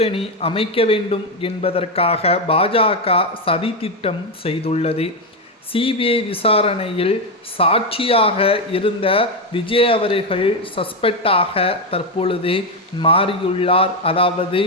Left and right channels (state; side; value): normal; both; correlation 0.08